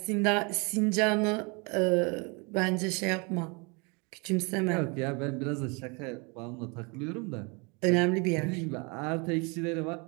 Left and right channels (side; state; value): left; quieter; 30.7 dB